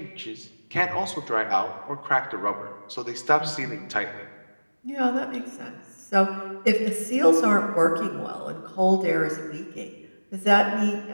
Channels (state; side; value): inverted; both; correlation -1.00